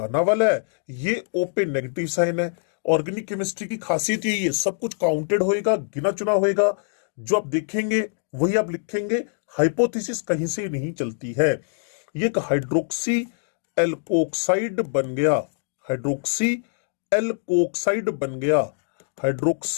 वाला है, ये O पे नेगेटिव साइन है। ऑर्गेनिक केमिस्ट्री की खासियत यही है, सब कुछ काउंटेड होएगा, गिना चुना होएगा। जो आप देखेंगे वही आप लिखेंगे, हाइपोथेसिस कहीं से नहीं चलती है। ये एक हाइड्रोक्सी एल्कोक्साइड बन गया, हाइड्रोक्सी एल्कोक्साइड बन गया।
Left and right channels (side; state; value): right; silent; digital silence